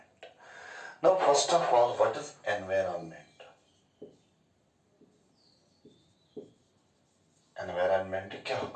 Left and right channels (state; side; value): identical; both; correlation 1.00